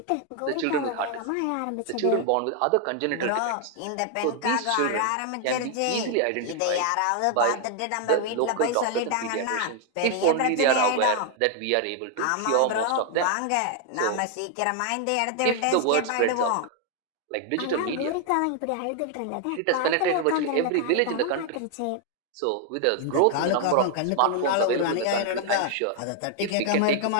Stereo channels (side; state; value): both; different; correlation 0.00